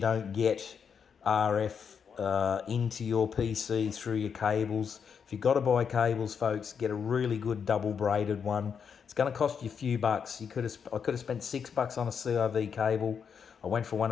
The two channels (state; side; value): quieter; right; 6.8 dB